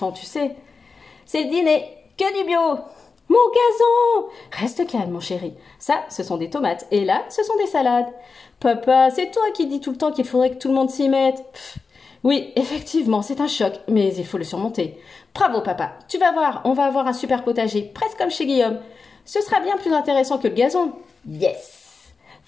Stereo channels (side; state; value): right; quieter; 4.6 dB